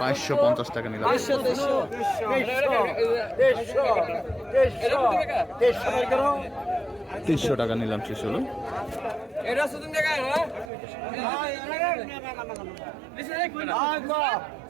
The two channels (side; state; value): left; drops out; at 10.7 s